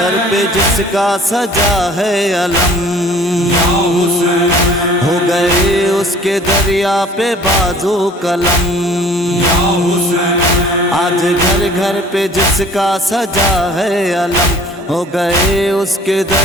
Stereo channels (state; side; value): normal; both; correlation 0.50